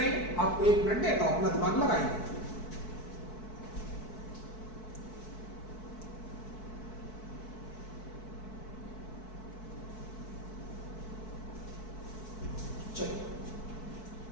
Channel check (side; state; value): right; late; 4.6 ms